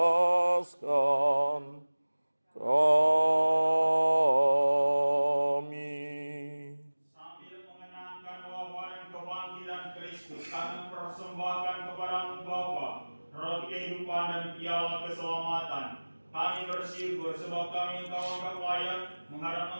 kami. Sambil mengenangkan wafat dan kebangkitan Kristus, kami persembahkan kepadamu Bapa roti kehidupan dan piala keselamatan. Kami bersyukur sebab kami Engkau anggap layak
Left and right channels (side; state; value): both; inverted; correlation -1.00